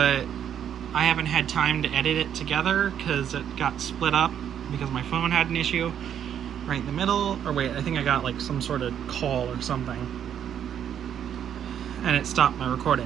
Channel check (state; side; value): quieter; left; 9.3 dB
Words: I haven't had time to edit it together because it got split up because my phone had an issue right in the middle. Or wait, I think I got like some sort of call or something, and it stopped my